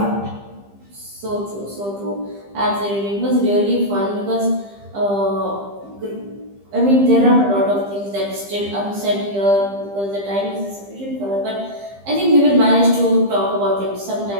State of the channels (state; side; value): late; left; 15 ms